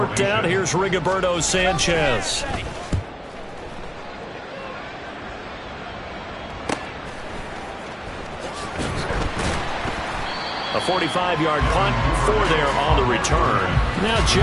down, here's Rigoberto Sanchez. A 45-yard punt, 4 there on the return. Now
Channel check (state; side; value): identical; both; correlation 1.00